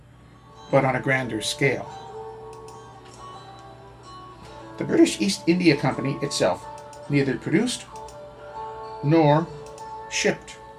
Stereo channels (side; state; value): both; identical; correlation 1.00